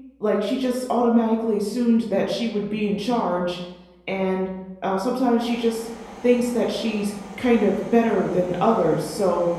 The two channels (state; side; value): identical; both; correlation 1.00